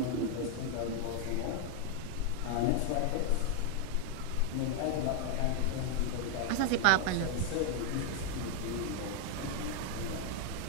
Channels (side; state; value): both; different; correlation 0.00